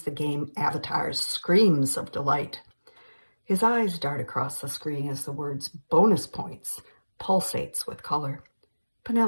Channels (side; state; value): both; inverted; correlation -1.00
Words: the game avatar's screams of delight. His eyes dart across the screen as the words bonus points pulsates with color.